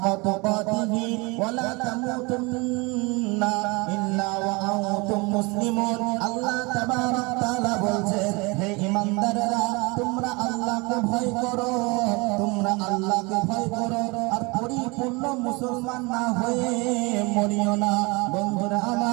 তুকাতিহি ওয়া লা তামুতুন্না ইল্লা ওয়া আনতুম মুসলিমুন। আল্লাহ তাবারক তাআলা বলছেন, হে ঈমানদাররা, তোমরা আল্লাহকে ভয় করো, তোমরা আল্লাহকে ভয় করো, আর পরিপূর্ণ মুসলমান না হয়ে মরিও না। বন্ধুরা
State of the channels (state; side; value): quieter; left; 26.8 dB